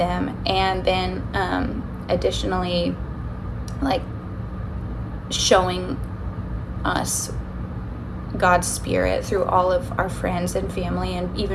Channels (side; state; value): both; identical; correlation 1.00